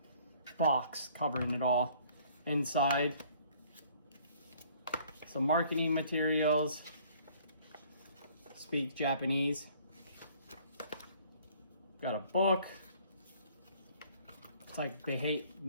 box covering it all. Inside, some marketing materials. Speak Japanese. Got a book. It's like they hate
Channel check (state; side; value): inverted; both; correlation -0.57